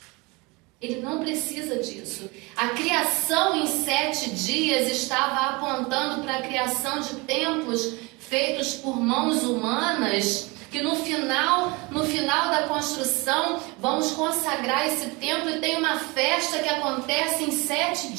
Ele não precisa disso. A criação em 7 dias estava apontando para a criação de templos feitos por mãos humanas, que no final da construção vamos consagrar esse templo e tem uma festa que acontece em 7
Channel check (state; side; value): quieter; left; 26.1 dB